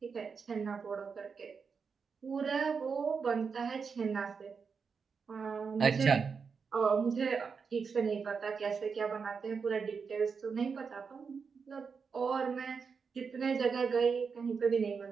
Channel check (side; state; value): left; quieter; 5.6 dB